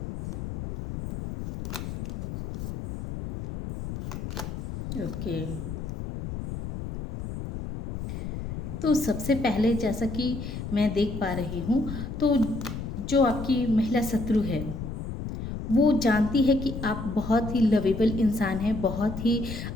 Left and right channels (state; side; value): noise; left; rumble, 7 dB below the sound